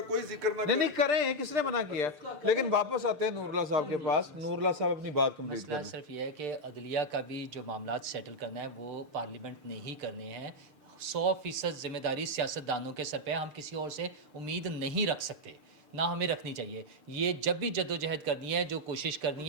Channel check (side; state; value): left; late; 6.7 ms